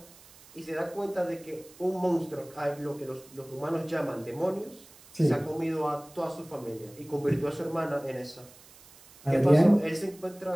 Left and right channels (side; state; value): right; noise; hiss, 23 dB below the sound